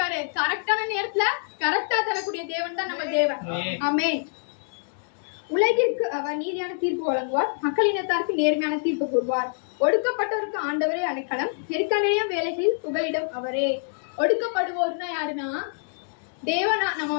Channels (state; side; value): silent; right; digital silence